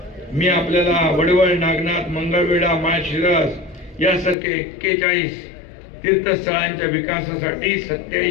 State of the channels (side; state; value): right; drops out; at 4.4 s